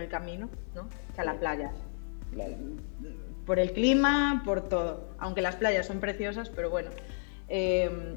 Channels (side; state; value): right; silent; digital silence